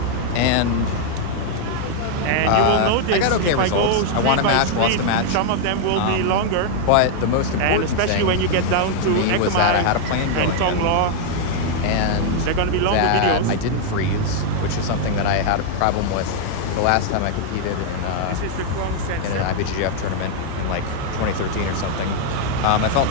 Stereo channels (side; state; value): both; different; correlation 0.00